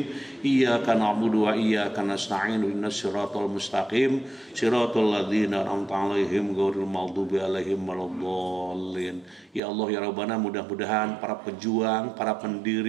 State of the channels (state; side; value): drops out; left; at 9.6 s